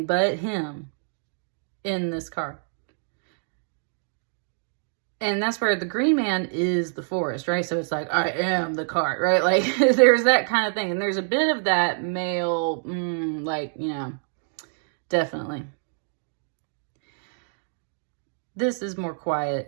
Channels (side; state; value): left; silent; digital silence